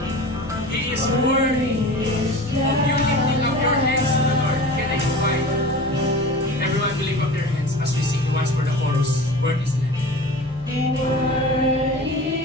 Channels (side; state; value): both; normal; correlation 0.36